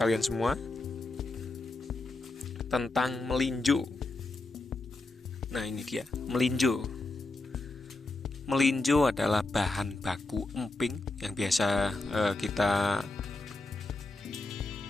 semua tentang melinjo. Nah, ini dia, melinjo. Melinjo adalah bahan baku emping yang biasa kita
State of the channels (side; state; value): right; quieter; 3.1 dB